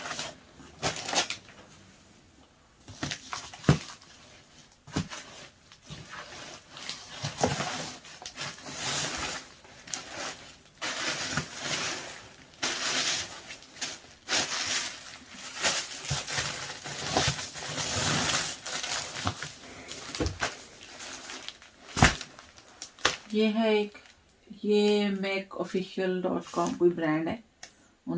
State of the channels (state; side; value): identical; both; correlation 1.00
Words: ये है एक, ये makeofficial.com कोई ब्रांड है,